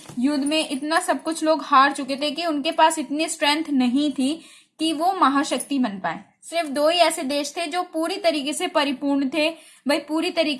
युद्ध में इतना सब कुछ लोग हार चुके थे कि उनके पास इतनी स्ट्रेंथ नहीं थी कि वो महाशक्ति बन पाए। सिर्फ दो ही ऐसे देश थे जो पूरी तरीके से परिपूर्ण थे, भाई पूरी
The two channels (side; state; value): both; identical; correlation 1.00